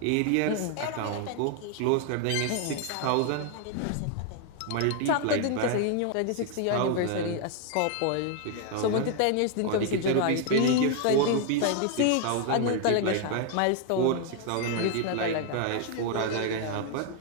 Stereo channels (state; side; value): different; both; correlation 0.00